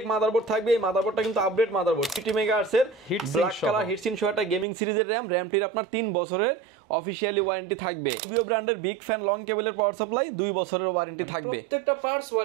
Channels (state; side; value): drops out; left; at 4.7 s